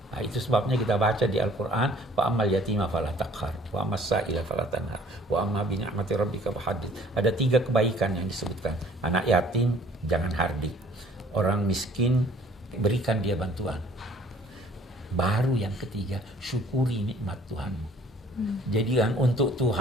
Nah, itu sebabnya kita baca di Al-Quran, wa ammal yatima fala taqhar, wa ammas sa'ila fala tanhar, wa amma bi ni'mati rabbika fahaddits. Ada 3 kebaikan yang disebutkan. Anak yatim jangan hardik. Orang miskin berikan dia bantuan. Baru yang ketiga, syukuri nikmat Tuhanmu. Jadi yang untuk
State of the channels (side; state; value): both; normal; correlation 0.55